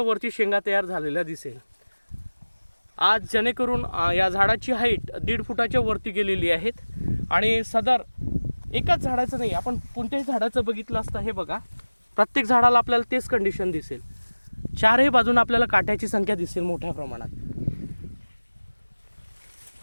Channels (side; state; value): both; inverted; correlation -1.00